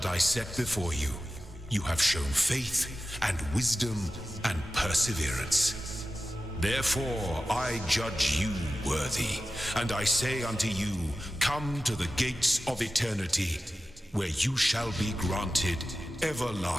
I set before you. You have shown faith and wisdom and perseverance. Therefore I judge you worthy, and I say unto you, come to the gates of eternity, where you shall be granted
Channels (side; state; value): both; normal; correlation 0.94